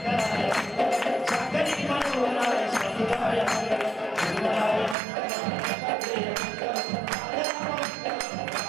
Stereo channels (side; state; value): left; drops out; at 5.0 s